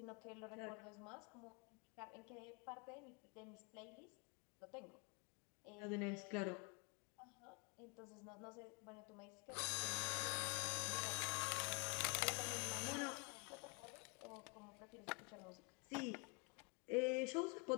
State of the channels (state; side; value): quieter; right; 31.3 dB